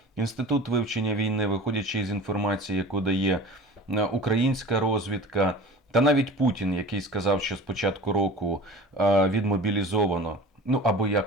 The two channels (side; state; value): both; normal; correlation 0.39